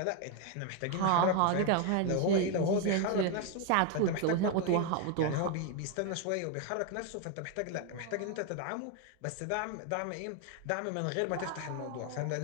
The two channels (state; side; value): different; both; correlation 0.01